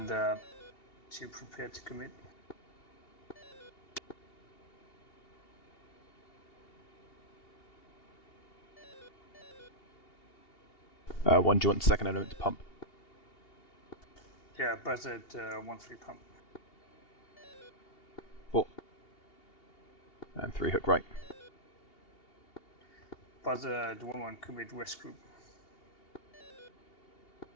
to prepare to commit. One, do you want the second element to pump? Yeah, Buzzard 1-3 pump. 4. And 3 hook right. Buzzard 1-1 commit West group.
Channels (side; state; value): right; late; 2.8 ms